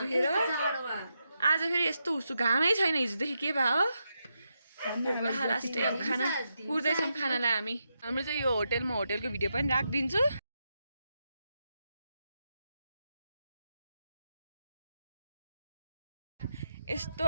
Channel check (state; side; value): inverted; both; correlation -0.85